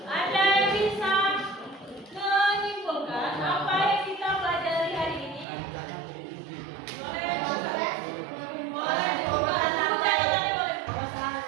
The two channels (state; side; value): drops out; left; at 5.5 s